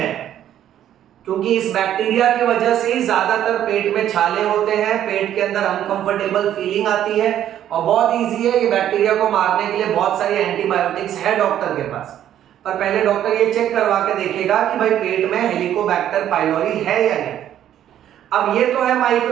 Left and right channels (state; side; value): quieter; left; 11.1 dB